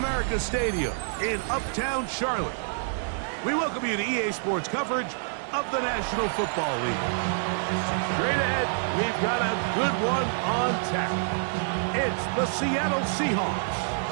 Stadium in Uptown Charlotte. We welcome you to EA Sports coverage of the National Football League. Straight ahead, we've got a good one on tap. It's the Seattle Seahawks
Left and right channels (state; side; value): silent; left; digital silence